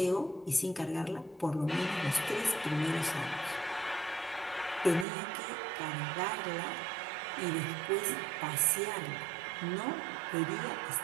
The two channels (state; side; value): drops out; left; at 5.1 s